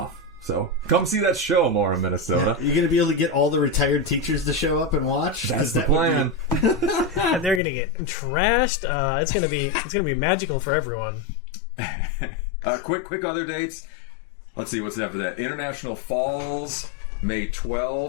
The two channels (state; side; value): drops out; right; at 7.6 s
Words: So come see that show more in Minnesota. Yeah. You're going to be able to get all the retired teachers to show up and watch. That's the plan. And they're going to get trashed. It's going to be magical for everyone. Quick other dates. Let's see what's after that. International Falls, May